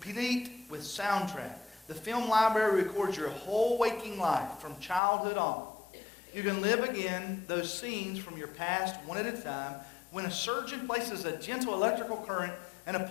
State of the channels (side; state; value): right; drops out; at 5.0 s